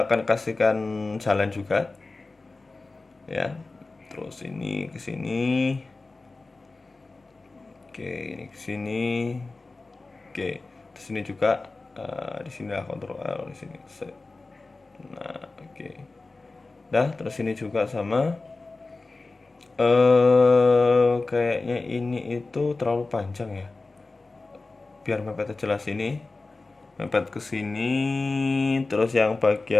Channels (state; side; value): quieter; right; 3.5 dB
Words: akan kasihkan jalan juga. Ya. Terus ini ke sini. Oke, ini ke sini. Oke. Terus ini juga di sini lah kontrol L di sini. Nah, oke. Dah, terus ini juga sama. Kayaknya ini itu terlalu panjang ya. Biar mepetnya jelas ini. Mepet ke sini, terus yang